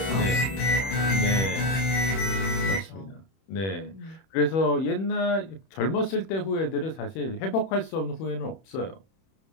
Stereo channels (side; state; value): right; late; 31 ms